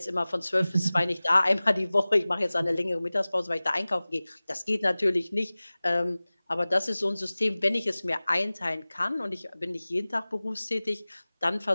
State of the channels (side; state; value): both; inverted; correlation -0.99